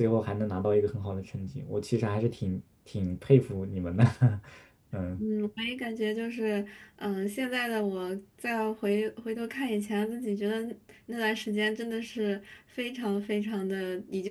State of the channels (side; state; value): both; identical; correlation 1.00